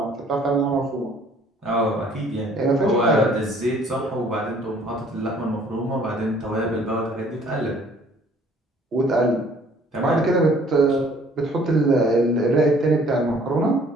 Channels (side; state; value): both; normal; correlation 0.57